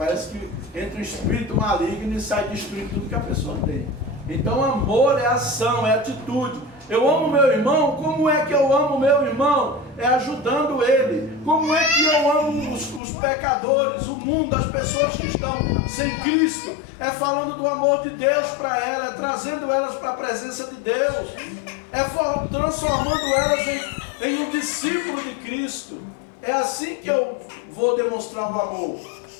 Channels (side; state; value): right; drops out; at 13.0 s